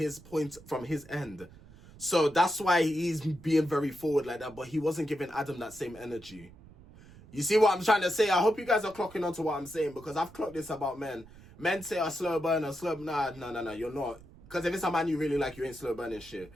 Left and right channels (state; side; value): noise; right; rumble, 21 dB below the sound